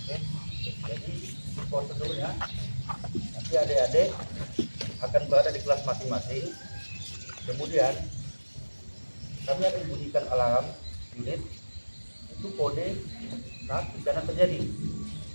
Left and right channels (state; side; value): inverted; both; correlation -1.00